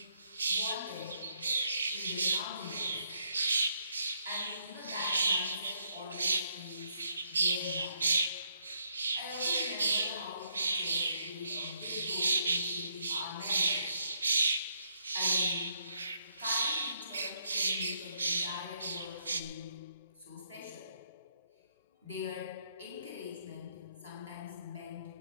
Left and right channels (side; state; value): both; inverted; correlation -0.72